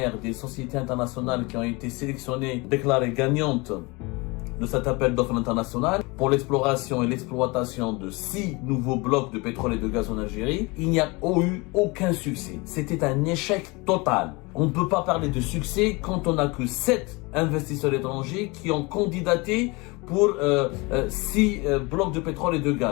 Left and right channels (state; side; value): quieter; right; 25.9 dB